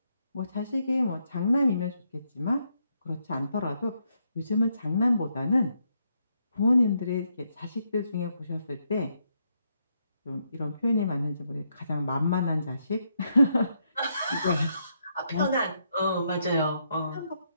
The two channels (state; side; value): inverted; both; correlation -0.77